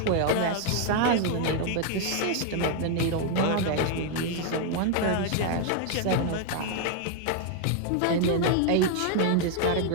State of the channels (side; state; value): both; different; correlation 0.00